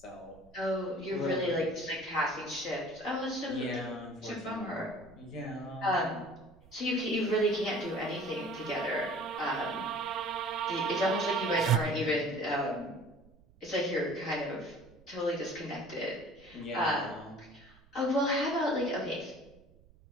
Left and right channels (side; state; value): right; noise; rumble, 26 dB below the sound